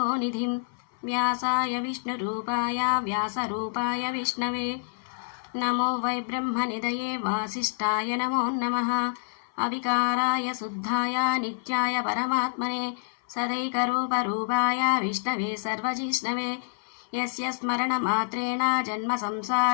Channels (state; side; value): silent; right; 60 dB below the other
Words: व्यासाय विष्णुरूपाय व्यासरूपाय विष्णवे नमो वै ब्रह्मनिधये वासिष्ठाय नमो नमः अविकाराय शुद्धाय नित्याय परमात्मने सदैकरूपरूपाय विष्णवे सर्वजिष्णवे यस्य स्मरणमात्रेण